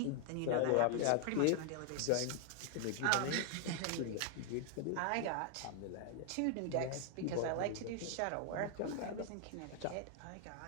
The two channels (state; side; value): different; both; correlation 0.00